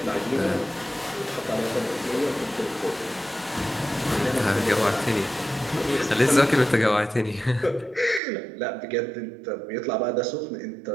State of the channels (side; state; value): left; drops out; at 8.2 s